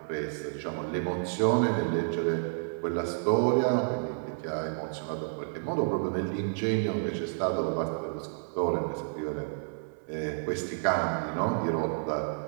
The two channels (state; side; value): silent; left; 58 dB below the other